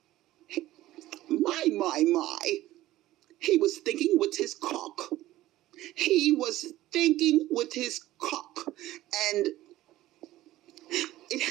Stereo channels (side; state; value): left; quieter; 15.7 dB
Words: My. He was thinking with his cock. He was thinking with his cock. And it